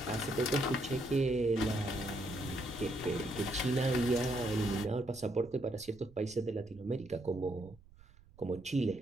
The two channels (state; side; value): noise; right; rumble, 24 dB below the sound